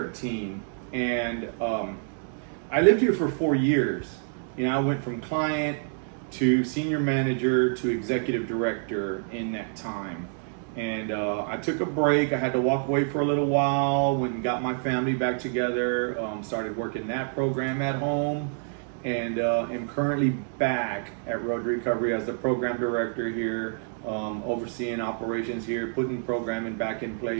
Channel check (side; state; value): left; silent; 60 dB below the other